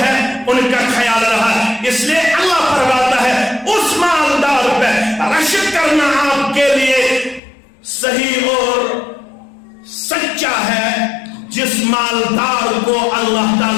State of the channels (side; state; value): right; drops out; at 7.4 s